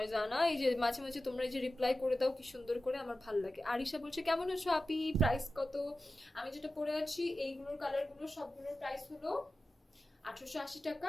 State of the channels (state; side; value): normal; both; correlation 0.94